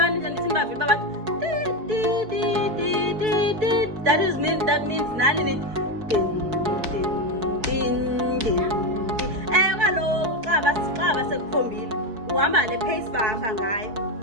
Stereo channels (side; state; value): left; late; 4.6 ms